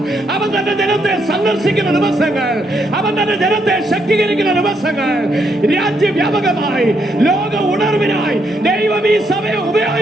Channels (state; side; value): normal; both; correlation 0.76